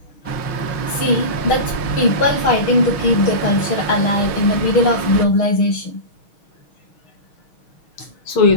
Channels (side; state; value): right; late; 6.3 ms